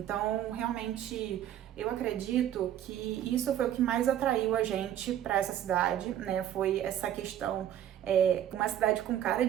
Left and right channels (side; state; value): left; quieter; 11.0 dB